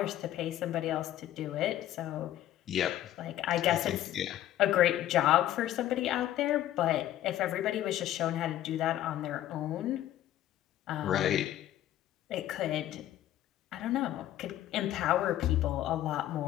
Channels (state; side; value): quieter; right; 13.0 dB